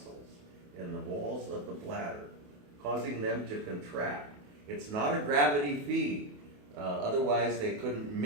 in the walls of the bladder, causing them to contract. It's not a gravity feed. Otherwise, they couldn't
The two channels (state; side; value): late; left; 28 ms